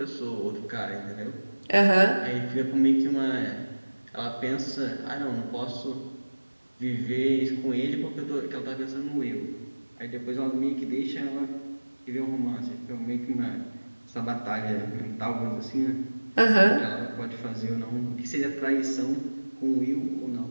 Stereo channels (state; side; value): inverted; both; correlation -1.00